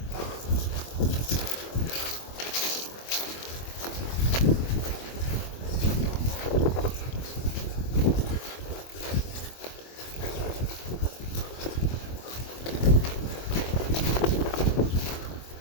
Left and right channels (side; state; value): right; late; 24 ms